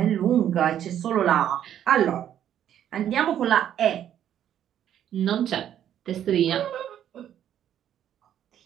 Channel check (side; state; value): left; quieter; 10.4 dB